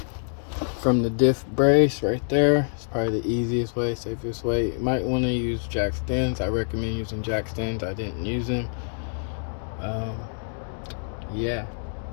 from the diff brace right there. It's probably the easiest way, safest way. You might want to use jack stands. I recommend using jack stands. I didn't use them. Yeah,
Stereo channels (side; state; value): right; silent; digital silence